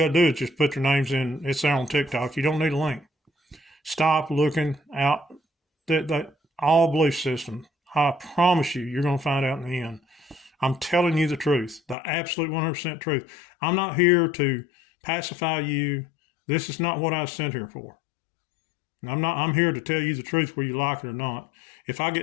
to do is just put their names in. It's there on TikTok. You don't need a link. Stop looking out. That all belief system. I promise you, you're going to find out in the end. I'm telling you the truth, the absolute 100% truth. I'm not here to pacify you. This is not what I was sent here for. I'm here to tell you the truth whether you like it or not. If I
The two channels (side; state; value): right; drops out; at 12.0 s